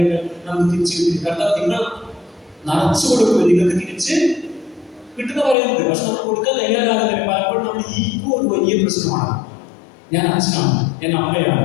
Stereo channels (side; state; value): right; drops out; at 5.6 s